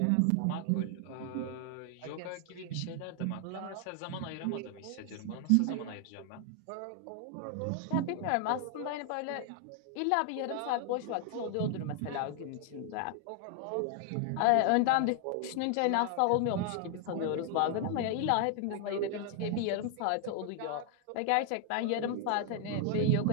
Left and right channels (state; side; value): different; both; correlation 0.00